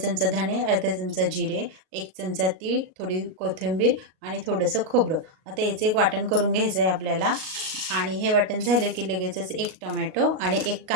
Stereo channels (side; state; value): left; late; 38 ms